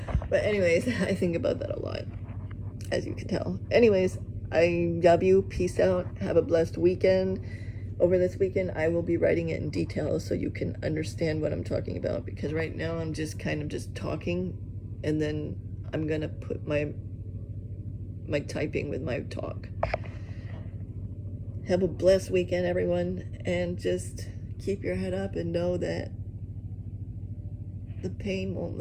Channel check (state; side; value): identical; both; correlation 1.00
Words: But anyways, I think about that a lot, as you can tell. Anyways, I love you. Peace out. Have a blessed weekend. Over this weekend, I will be writing it in detail so you can understand what I'm talking about, because right now I'm just kind of just talking, and then I'm going to put my typing with my talk. Have a blessed weekend, everyone, and just keep your head up and know that the pain won't